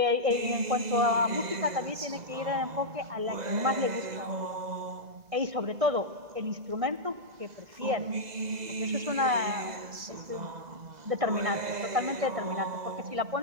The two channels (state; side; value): late; left; 2.0 ms